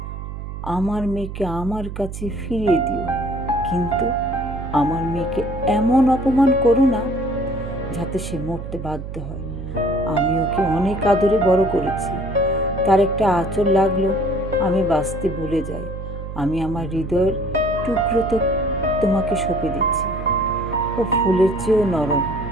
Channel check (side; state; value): right; noise; hum, 8 dB below the sound